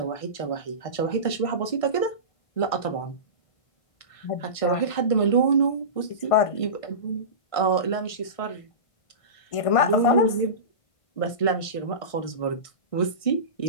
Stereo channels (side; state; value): right; late; 1.6 ms